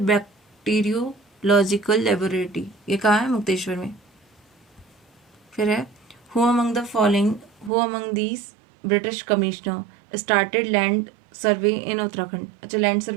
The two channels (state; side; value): drops out; left; at 7.7 s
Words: बैक्टीरियोलॉजिकल लेबोरेटरी ये कहाँ है? मुक्तेश्वर में। फिर है who among the following who among these British commissioner started land survey in Uttarakhand. अच्छा, लैंड